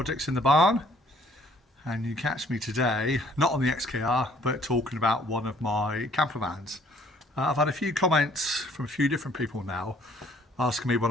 in the Barn, and you catch me today not on the XKR but talking about one of my camper vans. I've had a few comments from a few different people now asking me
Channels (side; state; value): both; normal; correlation 0.59